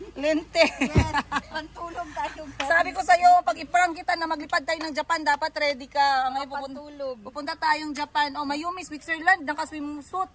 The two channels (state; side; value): identical; both; correlation 1.00